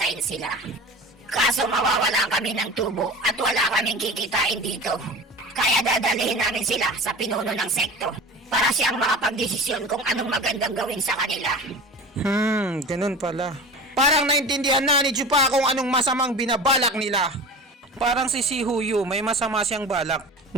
sila. Kaso mawawalan kami ng tubo at wala kaming kikitain dito. Kaya dadalhin namin sila sa pinuno ng sekto para siyang makapagdesisyon kung anong magandang gawin sa kanila. Ganun pala. Parang naintindihan na ni Chupa kung anong masamang binabalak nila. Parang si Huyu may masama siyang balak.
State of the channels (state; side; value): normal; both; correlation 0.34